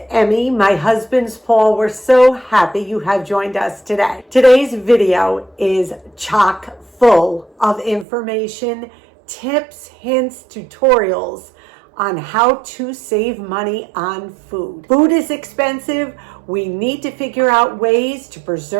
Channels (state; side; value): drops out; left; at 8.1 s